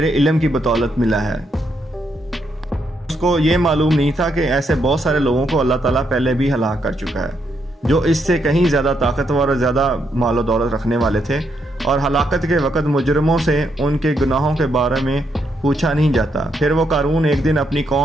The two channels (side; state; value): both; normal; correlation 0.78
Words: علم کی بدولت ملا ہے۔ اس کو یہ معلوم نہیں تھا کہ ایسے بہت سارے لوگوں کو اللہ تعالیٰ پہلے بھی ہلاک کر چکا ہے جو اس سے کہیں زیادہ طاقتور اور زیادہ مال و دولت رکھنے والے تھے، اور ہلاکت کے وقت مجرموں سے ان کے گناہوں کے بارے میں پوچھا نہیں جاتا۔ پھر وہ قارون ایک دن اپنی